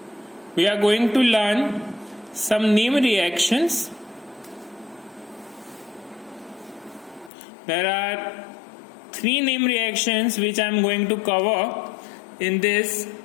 we are going to learn some name reactions. There are 3 name reactions which I am going to cover in this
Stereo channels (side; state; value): right; drops out; at 7.3 s